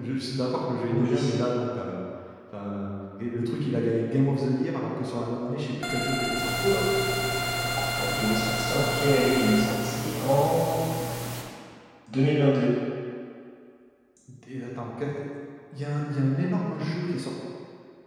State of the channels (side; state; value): both; identical; correlation 1.00